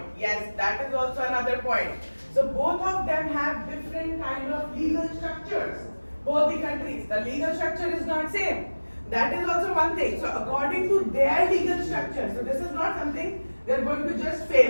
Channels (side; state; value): both; inverted; correlation -1.00